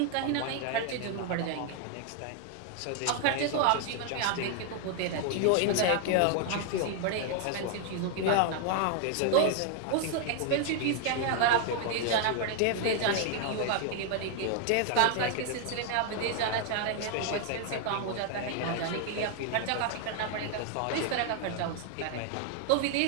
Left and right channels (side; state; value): both; different; correlation 0.00